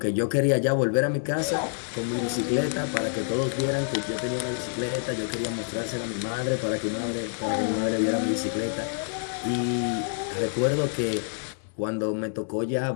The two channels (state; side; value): silent; right; 60 dB below the other